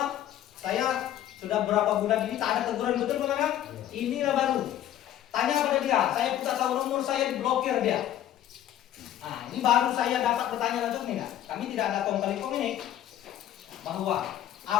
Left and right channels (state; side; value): quieter; right; 11.9 dB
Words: saya sudah berapa bulan ini tak ada teguran betul Pak Manaf. Inilah baru Tanya pada dia, saya minta tahu nomor saya diblokir dia. Nah, ini baru saya dapat bertanya langsung nih, kami tidak ada kong kali kong ini bahwa